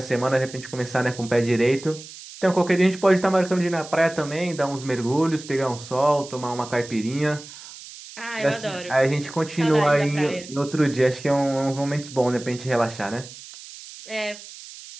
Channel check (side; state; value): right; noise; hiss, 16 dB below the sound